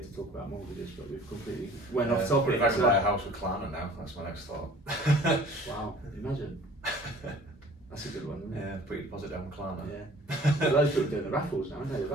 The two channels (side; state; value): both; normal; correlation 0.49